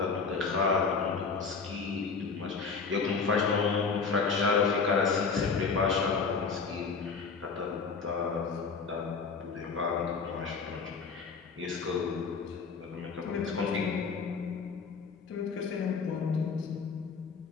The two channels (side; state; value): right; quieter; 5.0 dB